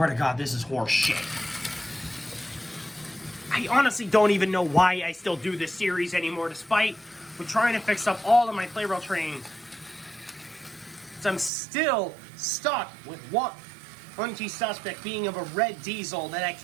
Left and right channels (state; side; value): drops out; left; at 11.5 s